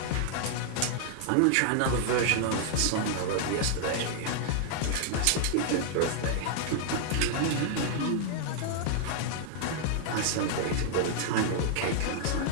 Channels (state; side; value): different; both; correlation 0.00